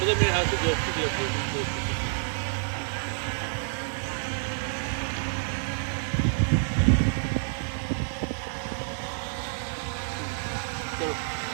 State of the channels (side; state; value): left; silent; digital silence